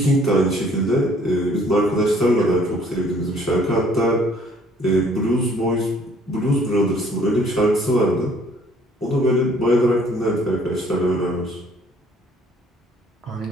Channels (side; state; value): both; normal; correlation 0.59